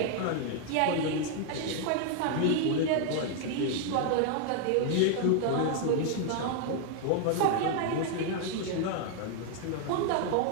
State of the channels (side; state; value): both; different; correlation 0.00